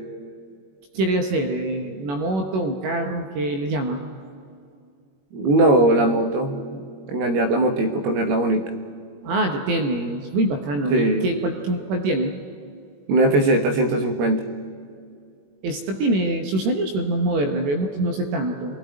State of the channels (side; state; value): left; late; 21 ms